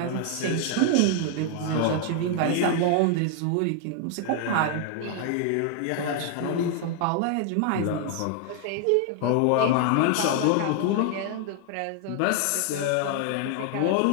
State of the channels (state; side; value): different; both; correlation 0.00